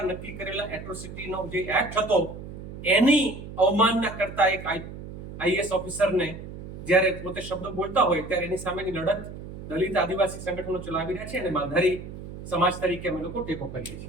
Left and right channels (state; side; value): noise; right; hum, 12 dB below the sound